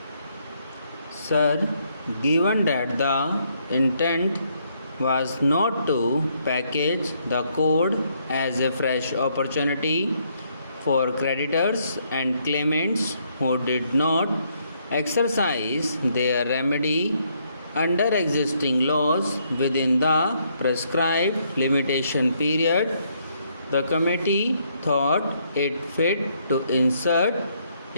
Sir, given that the intent was not to package the code as a fresh opportunity for creditors and claimants who did not exercise their remedy under existing laws within the prescribed limitation period, the committee thought it fit to insert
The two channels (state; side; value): inverted; both; correlation -0.72